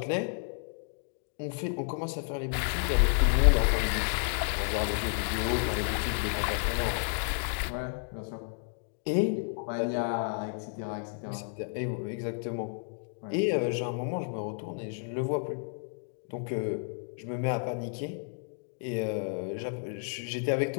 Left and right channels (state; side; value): silent; right; 57 dB below the other